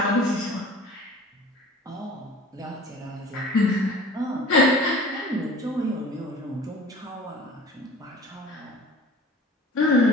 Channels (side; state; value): both; normal; correlation 0.42